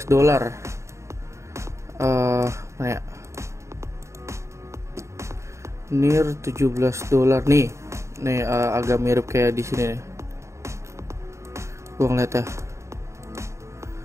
Mana ya? NIR $17 nih. Nih agak mirip kayak di sini nih. Gua ngeliat ya.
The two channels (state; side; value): late; left; 0.14 ms